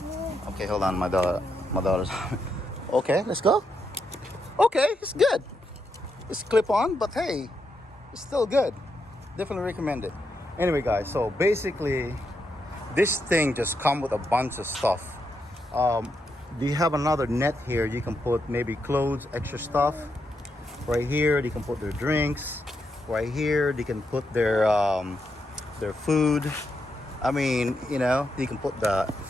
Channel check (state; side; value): normal; both; correlation 0.82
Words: Okay, hold on, my daughter's. Okay, let's go. Okay, it's good. It's clip on, but hey, it's still good. Definitely recommend it. Anyway, guys, so basically, this thing just comes with a bunch of stuff. Do you have another net here? You can put maybe clothes, extra stuff. Right here, they can put their drinks. Right here, they can put their food. I mean, you know, you can put the